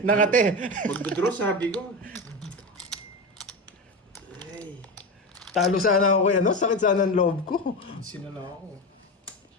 Nakate. Magdodraw, sabi ko. Ay. Talo sana ako ano? Sakit sana ang loob ko. Sinala ako.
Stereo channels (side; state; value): both; normal; correlation 0.20